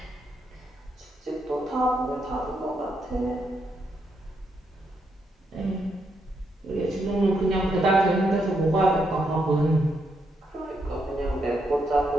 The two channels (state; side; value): normal; both; correlation 0.79